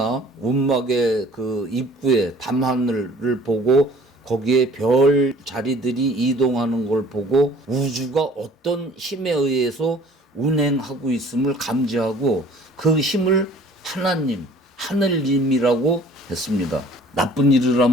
운막의 그 입구에 밤하늘을 보고 거기에 별 자리들이 이동하는 걸 보고 우주가 어떤 힘에 의해서 운행하고 있음을 감지하고 그 힘을 하나님, 하늘님이라고 했습니다. 나쁜 일을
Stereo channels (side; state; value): both; normal; correlation 0.51